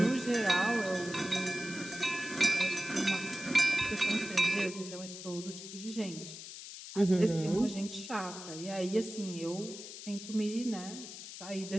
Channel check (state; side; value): noise; left; hiss, 11 dB below the sound